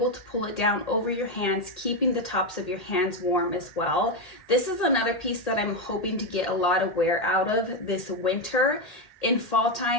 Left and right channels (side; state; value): right; late; 1.8 ms